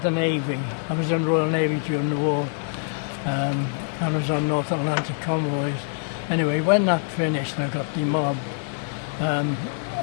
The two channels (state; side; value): silent; right; 62 dB below the other